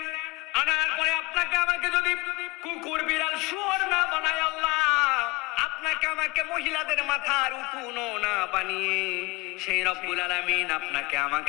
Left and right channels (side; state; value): right; quieter; 23.6 dB